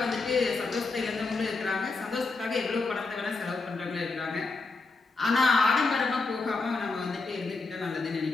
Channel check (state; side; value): quieter; right; 3.8 dB